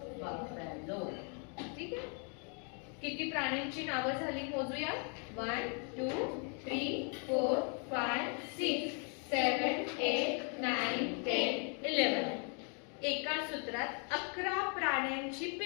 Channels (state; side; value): quieter; right; 39.2 dB